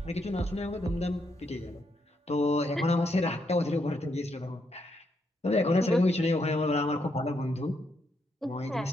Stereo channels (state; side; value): normal; both; correlation 0.78